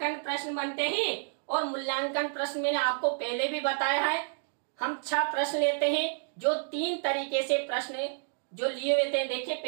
प्रश्न बनते हैं। और मूल्यांकन प्रश्न मैंने आपको पहले भी बताया है, हम 6 प्रश्न लेते हैं जो 3 तरीके से प्रश्न जो लिए हुए थे। देखिए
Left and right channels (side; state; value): left; silent; digital silence